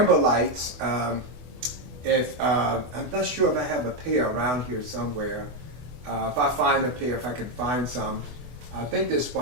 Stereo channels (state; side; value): late; left; 24 ms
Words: lights. I'm not sure if I have a pair around here somewhere. If I find a pair, if I can find some, I think there's